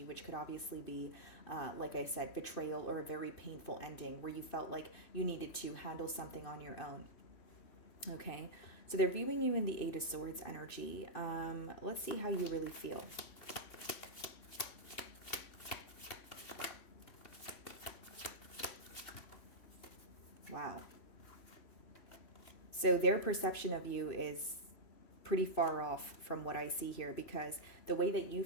which could obviously be, like I said, betrayal or a very painful ending where you felt like you needed to handle something on your own. Okay, so they're viewing you in the Eight of Swords energy. Let's see how you really feel. Wow. So their perception of you is pretty far off from what I see here, because the way that you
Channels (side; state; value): right; late; 2.6 ms